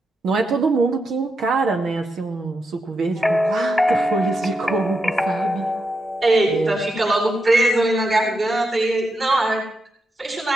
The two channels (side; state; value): both; normal; correlation 0.85